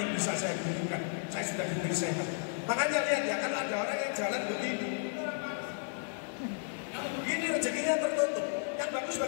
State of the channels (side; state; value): right; silent; digital silence